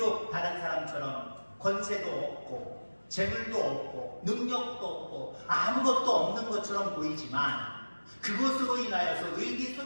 다른 사람처럼 권세도 없고 재물도 없고 능력도 없고 아무것도 없는 것처럼 보이지만 그것으로 인하여서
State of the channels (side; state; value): both; inverted; correlation -1.00